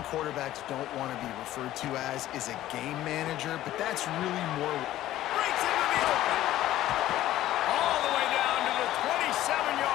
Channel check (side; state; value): right; quieter; 14.1 dB